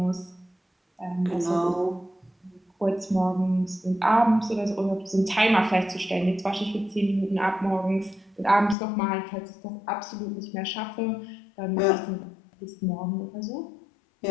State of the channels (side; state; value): right; drops out; at 8.8 s